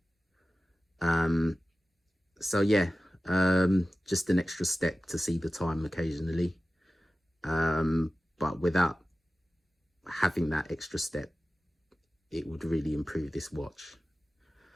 So yeah, just an extra step to see the time occasionally. But without having that extra step, it would really improve this watch.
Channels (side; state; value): both; normal; correlation 0.95